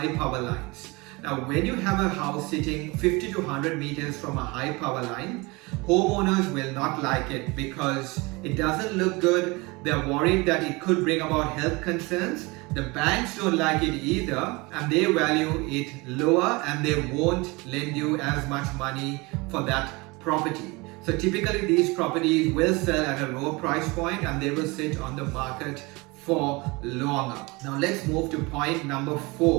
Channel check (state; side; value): quieter; left; 25.0 dB